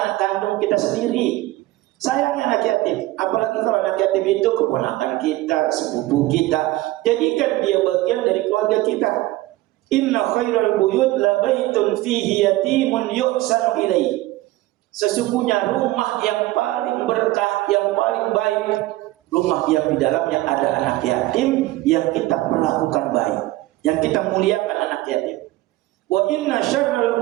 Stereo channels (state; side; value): quieter; left; 17.8 dB